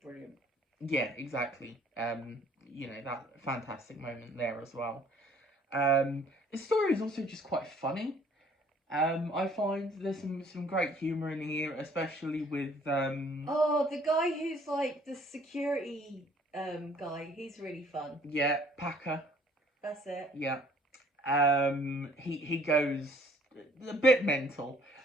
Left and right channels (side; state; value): both; normal; correlation 0.58